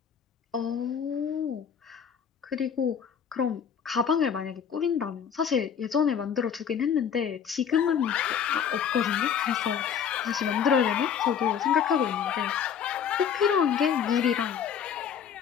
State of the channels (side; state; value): right; quieter; 7.8 dB